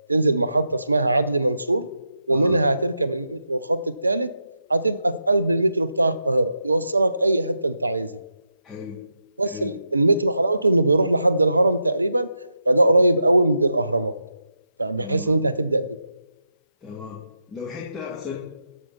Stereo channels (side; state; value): both; inverted; correlation -0.86